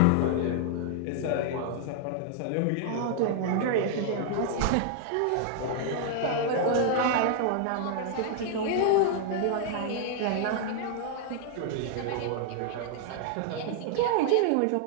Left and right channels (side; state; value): both; different; correlation 0.00